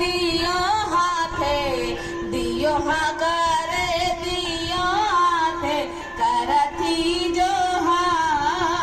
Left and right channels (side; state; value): both; identical; correlation 1.00